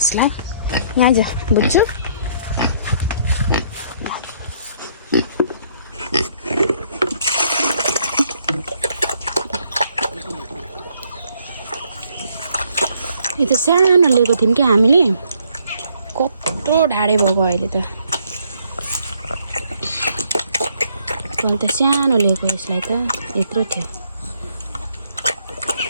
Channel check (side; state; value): both; inverted; correlation -0.67